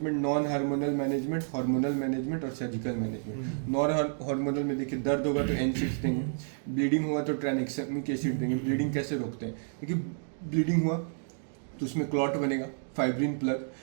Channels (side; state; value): left; silent; digital silence